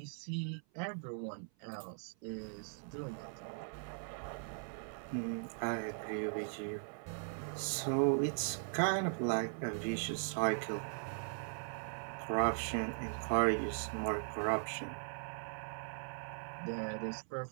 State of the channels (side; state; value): left; silent; 51 dB below the other